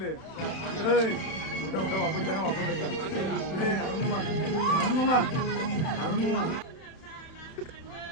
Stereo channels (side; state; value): right; late; 31 ms